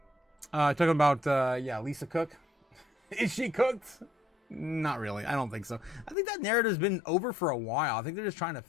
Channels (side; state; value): right; drops out; at 6.2 s